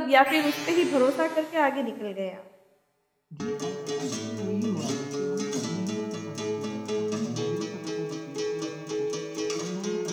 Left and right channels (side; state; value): both; identical; correlation 1.00